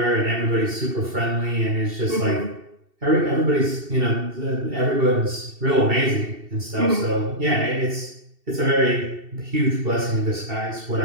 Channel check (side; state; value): left; late; 2.7 ms